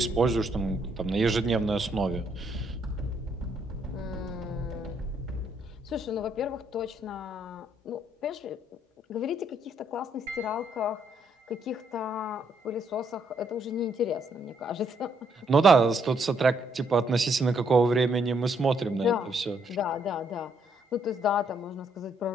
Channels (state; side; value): normal; both; correlation 0.72